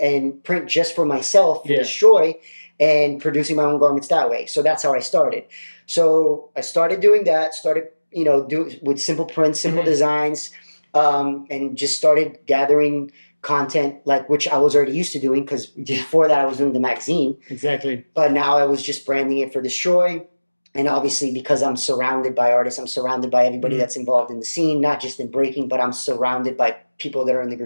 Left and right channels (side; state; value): both; inverted; correlation -1.00